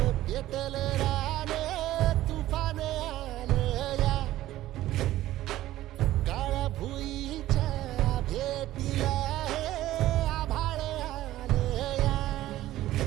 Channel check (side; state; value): left; quieter; 14.8 dB